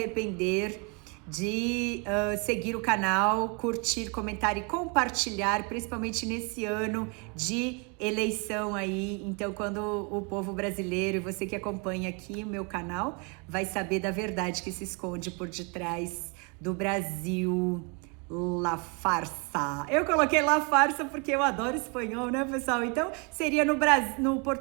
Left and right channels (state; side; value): quieter; left; 33.2 dB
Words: de seguir o canal, curtir, comentar e compartilhar, principalmente nesse ano de eleição aí. Então, quando o povo brasileiro e você que acompanha aqui o meu canal vai saber da verdade que se esconde por detrás do Brasil La farsa. Eu coloquei la farsa porque eu adoro espanhol, né, pessoal? Então, seria no